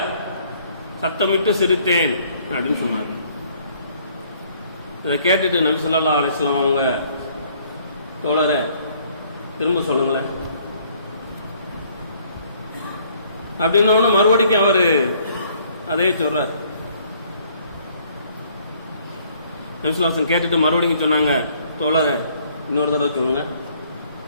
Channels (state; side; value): inverted; both; correlation -0.62